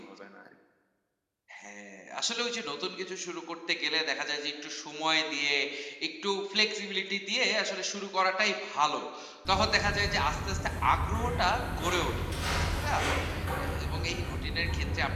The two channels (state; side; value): identical; both; correlation 1.00